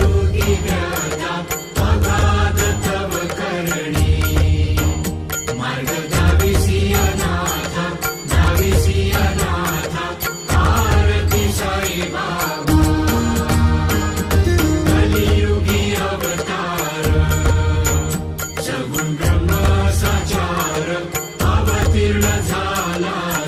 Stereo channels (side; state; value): both; identical; correlation 1.00